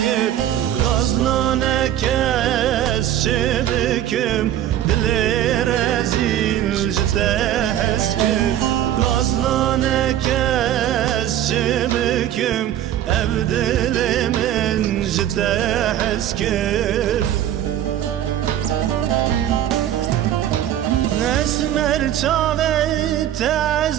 Gaznane kes çebikim dili rezil jite heskir Gaznane kes çebikim ev dilimin jite heskir Esmer çave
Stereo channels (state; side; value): quieter; left; 11.6 dB